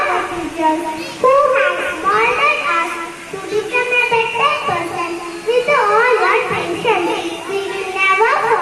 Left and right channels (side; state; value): both; identical; correlation 1.00